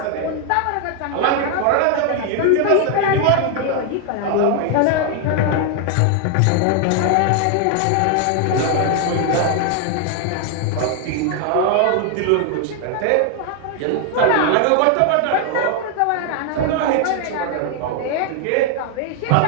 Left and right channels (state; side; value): different; both; correlation 0.00